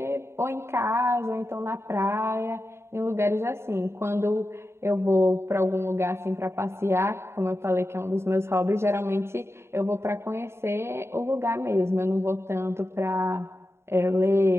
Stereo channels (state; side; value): late; left; 0.12 ms